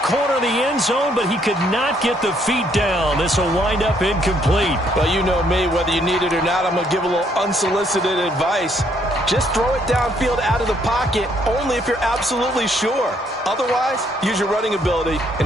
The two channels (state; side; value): normal; both; correlation 0.69